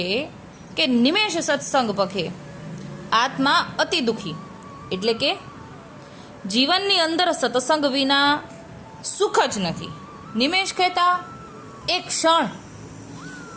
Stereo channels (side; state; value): both; identical; correlation 1.00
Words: કે નિમેષ સત્સંગ પખે આત્મા અતિ દુખી, એટલે કે જીવનની અંદર સત્સંગ વિના સુખ જ નથી. નિમેષ કહેતા એક ક્ષણ,